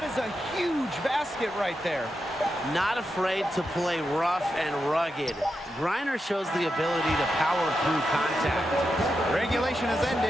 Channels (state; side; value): normal; both; correlation 0.87